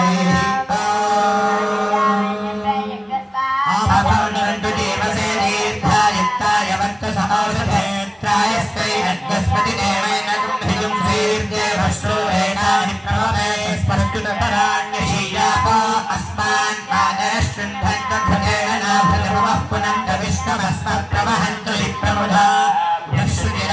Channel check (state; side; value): identical; both; correlation 1.00